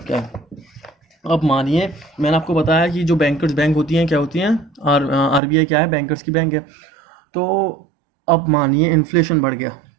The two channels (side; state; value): left; drops out; at 5.4 s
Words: क्या है। अब मानिए मैंने आपको बताया कि जो बैंकर्स बैंक होती हैं क्या होती हैं? आरबीआई क्या है? बैंकर्स की बैंक है। तो अब मानिए इन्फ्लेशन बढ़ गया,